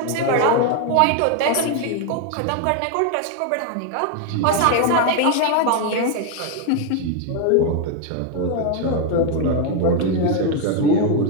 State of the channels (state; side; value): different; both; correlation 0.01